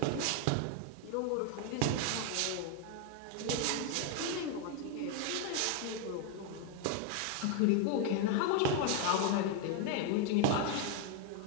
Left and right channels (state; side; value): different; both; correlation 0.01